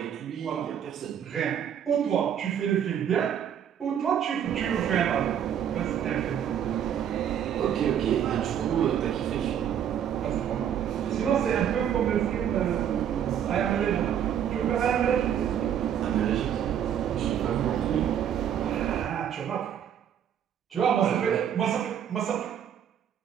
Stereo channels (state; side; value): quieter; left; 9.2 dB